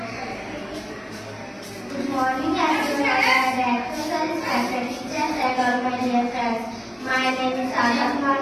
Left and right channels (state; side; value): identical; both; correlation 1.00